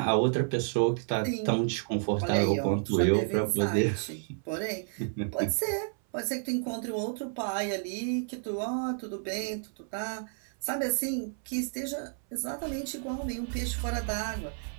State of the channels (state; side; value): silent; left; 57 dB below the other